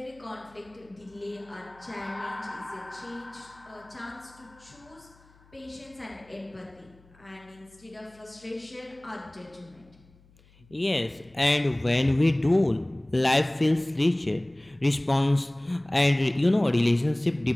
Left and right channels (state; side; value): noise; left; hum, 28 dB below the sound